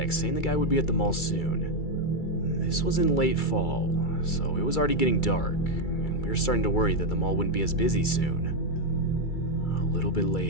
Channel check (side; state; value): right; late; 2.3 ms